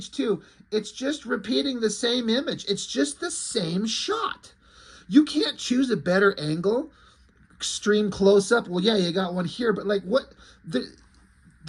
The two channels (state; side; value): identical; both; correlation 1.00